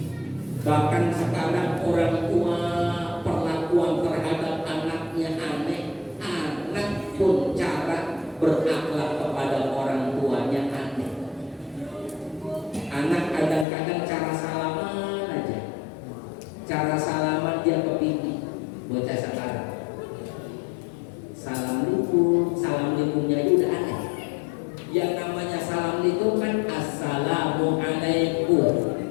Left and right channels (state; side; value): drops out; right; at 13.7 s